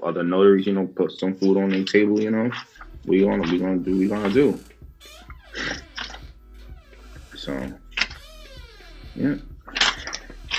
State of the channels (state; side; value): identical; both; correlation 1.00